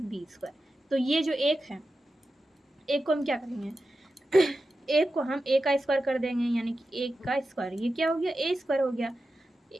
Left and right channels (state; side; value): normal; both; correlation 0.91